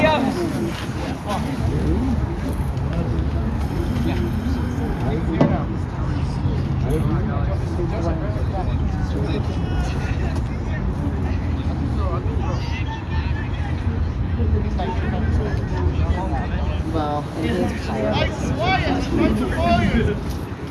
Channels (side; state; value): both; identical; correlation 1.00